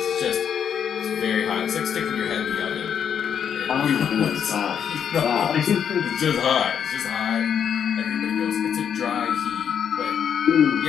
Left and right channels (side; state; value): right; quieter; 8.1 dB